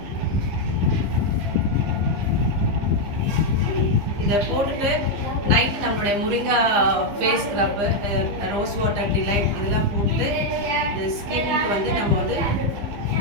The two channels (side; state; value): left; late; 15 ms